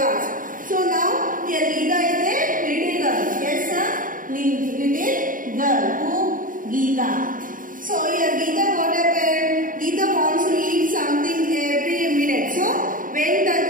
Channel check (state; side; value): late; left; 0.39 ms